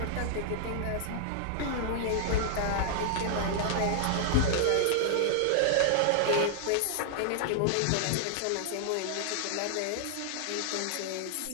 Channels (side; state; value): both; different; correlation -0.01